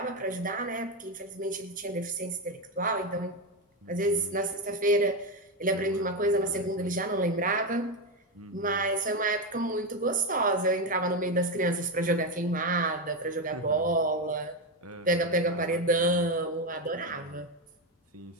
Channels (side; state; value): both; normal; correlation 0.10